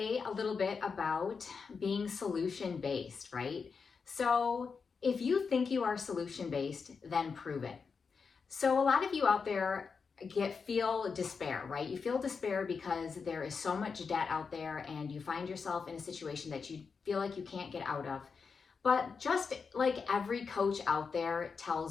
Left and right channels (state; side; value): quieter; right; 5.4 dB